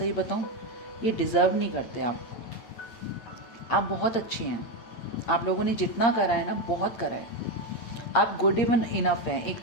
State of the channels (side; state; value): right; late; 8.7 ms